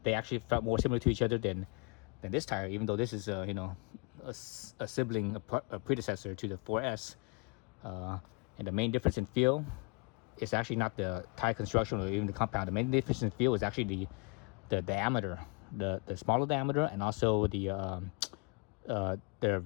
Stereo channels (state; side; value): quieter; right; 31.6 dB